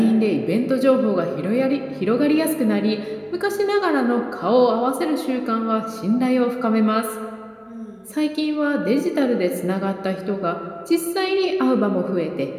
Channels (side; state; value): both; identical; correlation 1.00